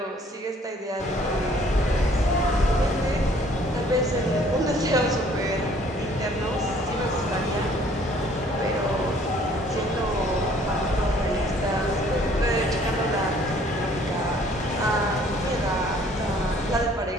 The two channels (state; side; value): normal; both; correlation 0.58